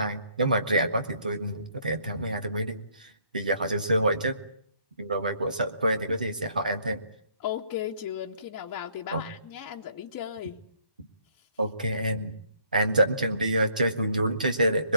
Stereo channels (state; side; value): inverted; both; correlation -0.65